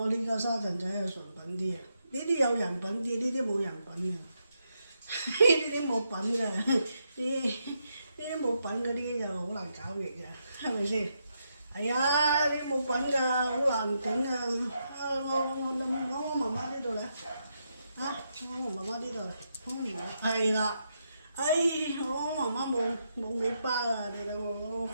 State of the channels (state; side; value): inverted; both; correlation -0.81